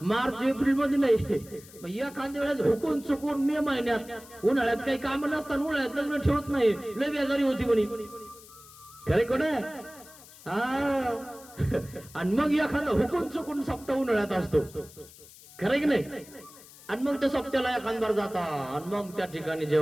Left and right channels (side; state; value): left; noise; hiss, 20 dB below the sound